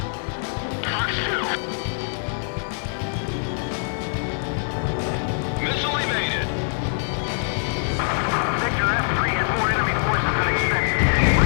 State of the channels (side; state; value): right; silent; digital silence